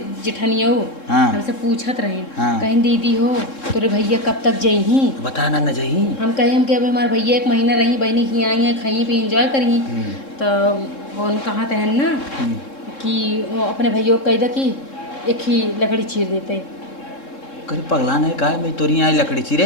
जेठनिया हाँ। हमसे पूछत रहे हाँ। कहीं दीदी हो तोरे भैया कब तक जही बताना न जाही हम कहे हम कि अब हमारे भैया 1 महीना रही बहनी की आई हैं खाई पे इंजॉय करी तो वो कहा तहन ना कि वो अपने भैया को कह दे कि एक ही लकड़ी चीर देते। करे पगला नहीं का मैं तोरी आई लकड़ी चिरे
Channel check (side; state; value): right; late; 3.7 ms